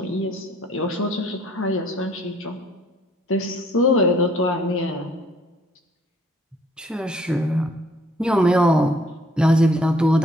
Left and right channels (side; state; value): both; normal; correlation 0.61